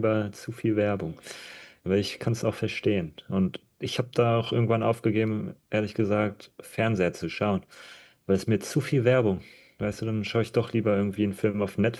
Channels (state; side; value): identical; both; correlation 1.00